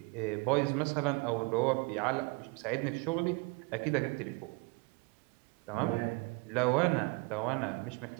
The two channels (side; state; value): left; quieter; 27.8 dB